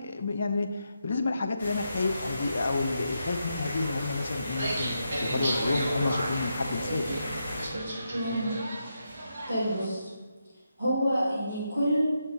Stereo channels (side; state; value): both; inverted; correlation -0.83